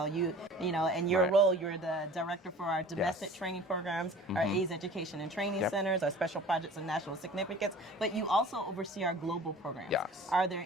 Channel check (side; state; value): both; normal; correlation 0.44